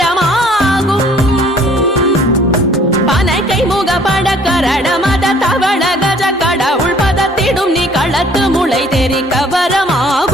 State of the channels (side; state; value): both; normal; correlation 0.57